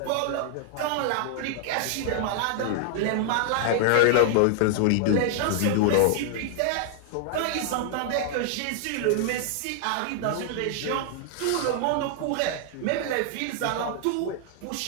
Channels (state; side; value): different; both; correlation 0.00